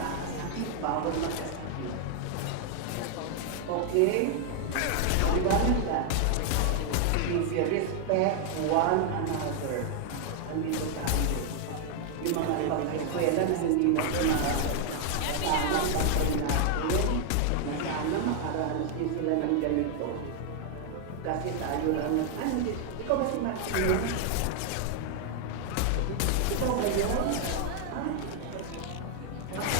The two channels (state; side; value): different; both; correlation 0.00